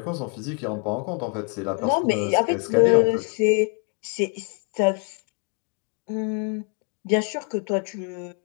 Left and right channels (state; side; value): quieter; right; 38.0 dB